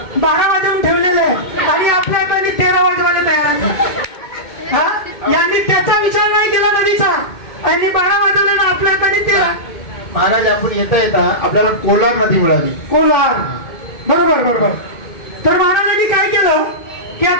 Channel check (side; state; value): right; late; 2.2 ms